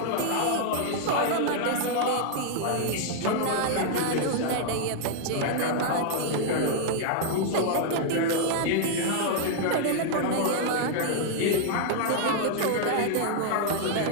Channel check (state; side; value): different; both; correlation 0.00